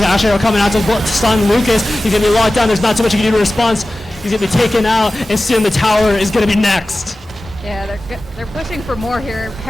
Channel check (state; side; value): normal; both; correlation 0.96